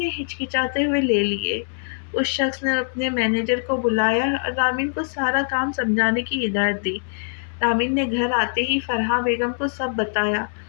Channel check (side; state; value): right; silent; digital silence